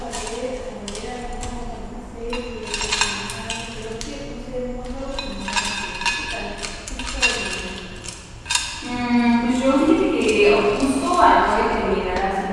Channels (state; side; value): identical; both; correlation 1.00